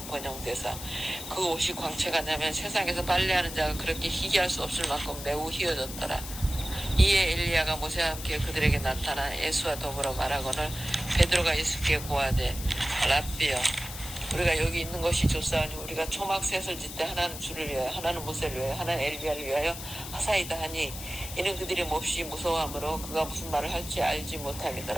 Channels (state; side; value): noise; left; hiss, 10 dB below the sound